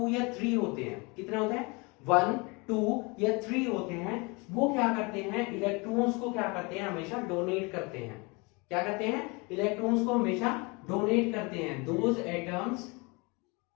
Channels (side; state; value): right; quieter; 28.1 dB